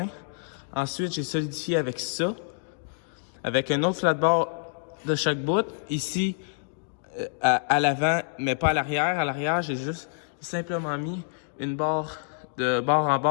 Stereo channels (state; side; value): silent; right; digital silence